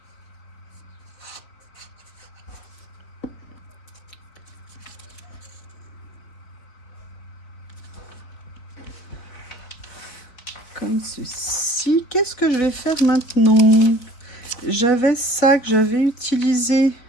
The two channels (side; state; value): right; late; 4.2 ms